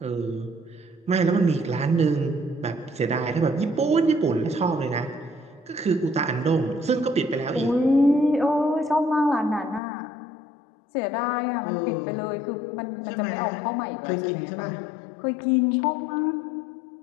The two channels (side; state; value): right; drops out; at 9.8 s